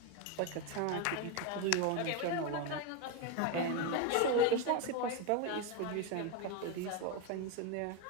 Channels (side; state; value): both; different; correlation 0.03